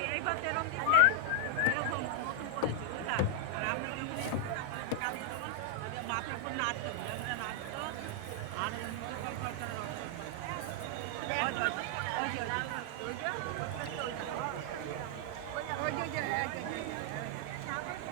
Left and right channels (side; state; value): both; different; correlation 0.00